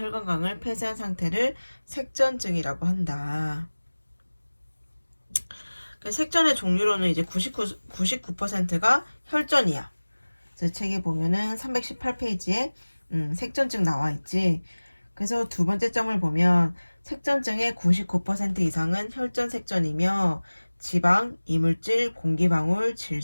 폐쇄한 상태를 색전증이라고 한다. 색전의 종류로는 이제 99%가 혈전이야. 그래서 책에 보면은 318페이지에 색전증 나와 있지. 그래서 두 번째 점을 보면 색전증의 99% 이상은 혈전 색전이며 지방, 이물질, 공기방울,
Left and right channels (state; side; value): inverted; both; correlation -1.00